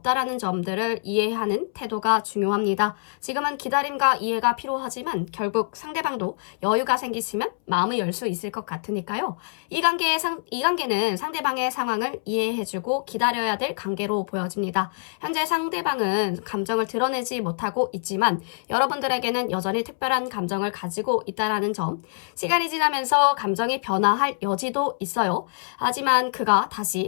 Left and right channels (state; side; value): silent; right; 62 dB below the other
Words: 점들을 이해하는 태도가 중요합니다. 지금은 기다림과 이해가 필요하지만 결국 상대방도 여유가 생기시면 마음을 열 수 있을 것 같으니까요. 이 관계는 상대방의 상황을 이해해주고 기다려야 될 관계로 보여집니다. 현재 상대방은 감정을 드러내지 못하고 있지만 여러분들에게는 여전히 특별한 감정을 가지고 있다는 점, 시간이 지나면서 감정이 변화할 여지도 있어요. 하지만